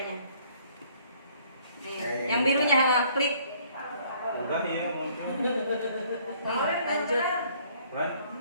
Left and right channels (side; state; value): both; inverted; correlation -0.60